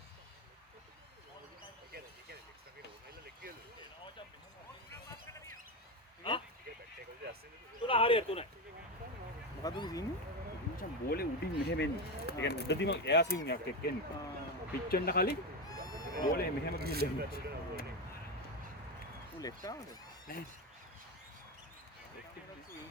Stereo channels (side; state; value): both; normal; correlation 0.15